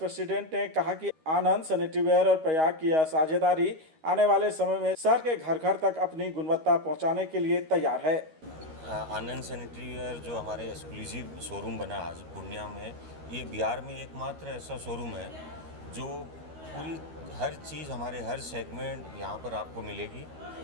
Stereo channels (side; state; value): left; late; 13 ms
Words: ने कहा कि आनंद सैनिटरीवेयर और प्रयाग की यह साझेदारी आने वाले समय में शहर के घर घर तक अपनी गुणवत्ता पहुंचाने के लिए तैयार है। आनंद सैनिटरीवेयर जो हमारे एक्सक्लूसिव शोरूम बना आज पूर्णिया में, ये बिहार में एकमात्र ऐसा शोरूम है जो पूरी हर चीज़ हमारे हर सेगमेंट यहाँ पर आपको मिलेगी